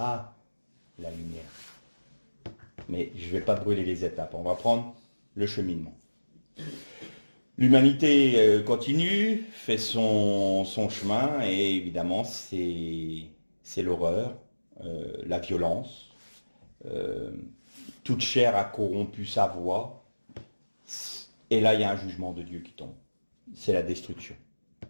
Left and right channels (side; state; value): both; inverted; correlation -1.00